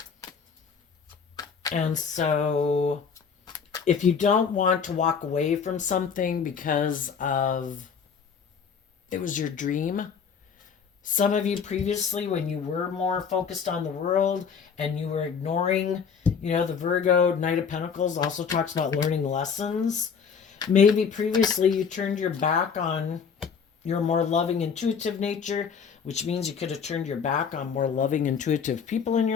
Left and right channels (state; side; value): quieter; right; 6.4 dB